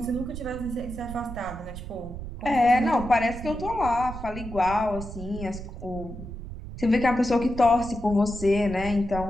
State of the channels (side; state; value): right; noise; rumble, 10 dB below the sound